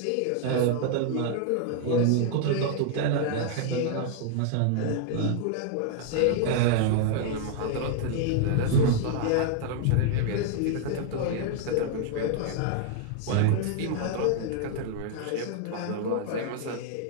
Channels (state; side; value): different; both; correlation 0.00